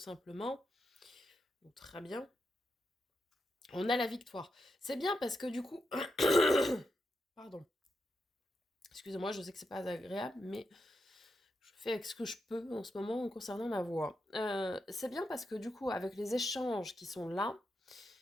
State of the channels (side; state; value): both; normal; correlation 0.85